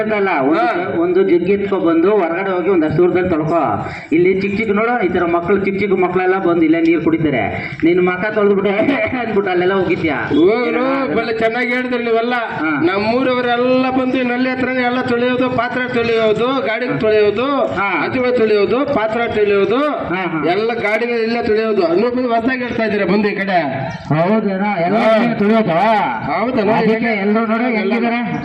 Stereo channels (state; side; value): identical; both; correlation 1.00